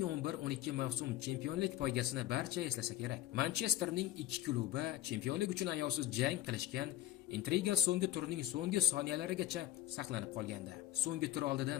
mavsum chempionlik poygasini barcha eslasa kerak. Manchesterning ikki klubi chempionlik uchun ayovsiz jang qilishgan, intriga so'nggi turning so'nggi soniyalarigacha saqlanib qolgandi. So'nggi tur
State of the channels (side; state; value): right; quieter; 13.5 dB